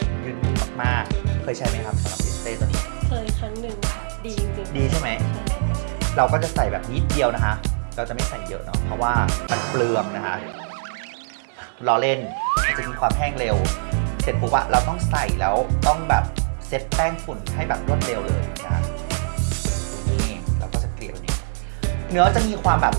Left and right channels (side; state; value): left; silent; digital silence